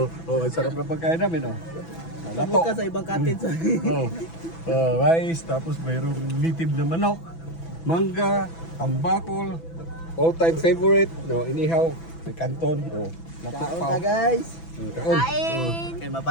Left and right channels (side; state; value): right; late; 6.0 ms